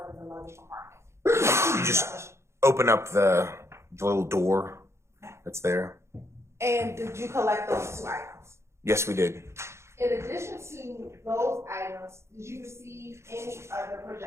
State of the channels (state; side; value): late; left; 0.13 ms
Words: in the luggage compartment? You just open up the little door that's there. And did you collect those two items? Yes, we did. In addition to those items, did you receive any other